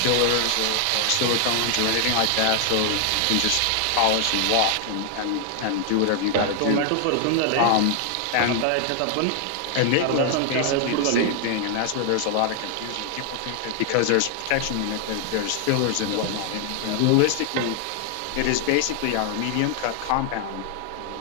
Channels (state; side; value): different; both; correlation 0.00